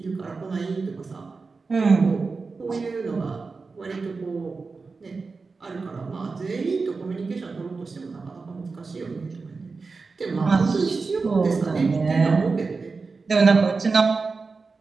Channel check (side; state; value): left; quieter; 4.3 dB